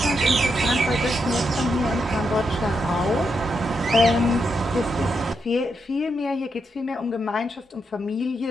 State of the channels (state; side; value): normal; both; correlation 0.82